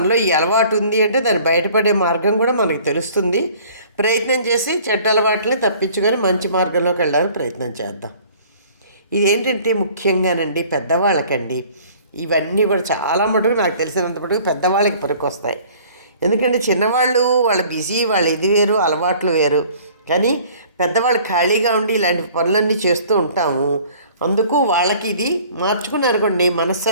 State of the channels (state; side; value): inverted; both; correlation -0.52